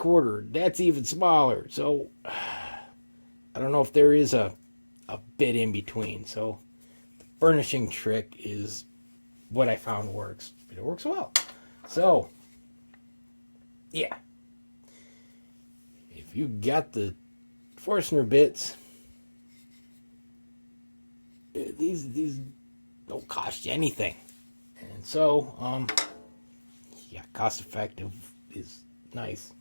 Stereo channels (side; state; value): both; inverted; correlation -1.00